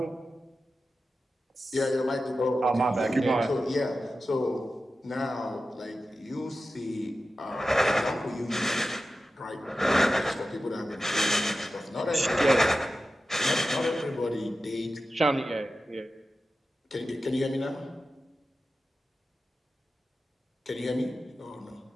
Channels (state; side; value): normal; both; correlation 0.93